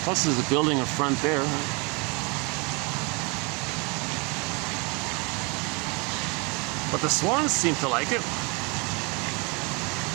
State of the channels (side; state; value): left; quieter; 30.4 dB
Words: Plus, there's a building in front there. But the swans seem to like it.